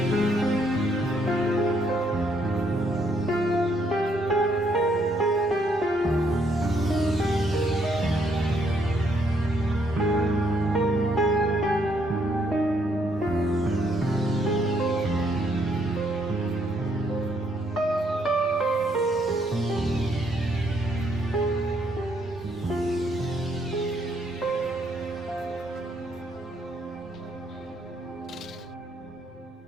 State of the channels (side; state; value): both; normal; correlation 0.71